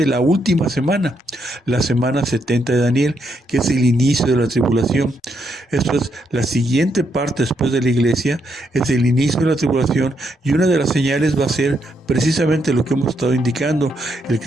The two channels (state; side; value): normal; both; correlation 0.78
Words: la última semana, la semana 70 de Daniel, que es el inicio de la tribulación. Esto es la siguiente parte después de la iglesia, es el inicio de la tribulación, y una de las señales va a ser precisamente lo que hemos estado indicando: el